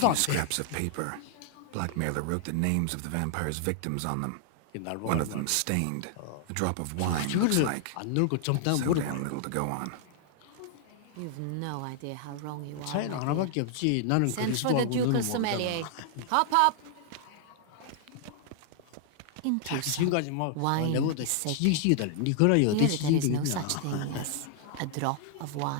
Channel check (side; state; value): both; different; correlation 0.00